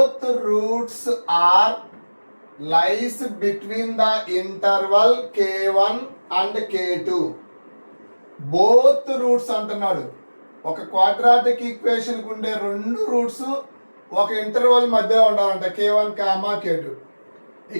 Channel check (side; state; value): both; inverted; correlation -1.00